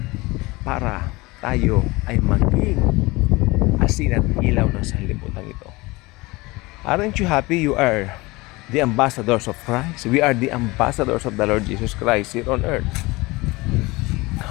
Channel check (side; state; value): right; quieter; 22.6 dB